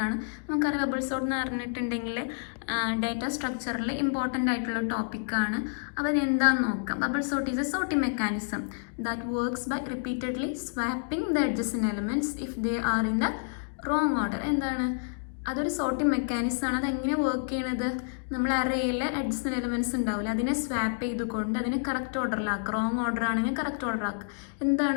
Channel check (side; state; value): right; silent; digital silence